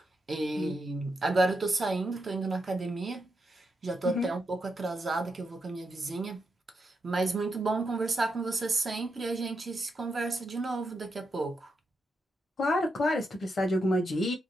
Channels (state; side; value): normal; both; correlation 0.84